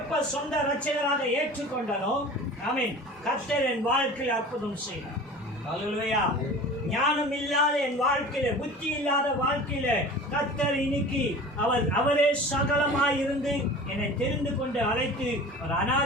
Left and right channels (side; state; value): both; normal; correlation 0.39